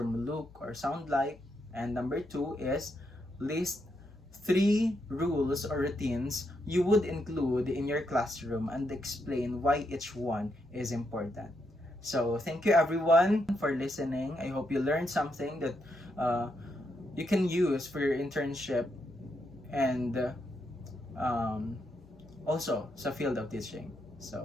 look or sound like? And number 2 is list 3 rules or routines you would include in your classroom and explain why each one is important. So thank you everyone for listening. I hope you learned something that you can use for your internship and also sa field of teaching. So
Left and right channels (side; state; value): both; normal; correlation 0.80